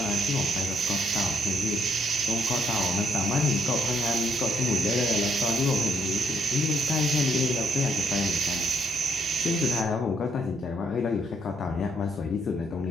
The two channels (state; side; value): normal; both; correlation 0.72